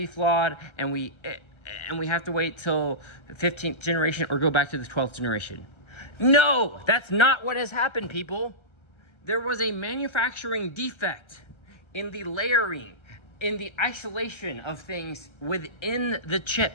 flawed, and we have to wait till the 15th generation or go back to the 12th generation. No, that's not what has happened, people. There was a manufacturing defect in the layering, in the isolation of things within the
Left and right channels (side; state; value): right; late; 1.3 ms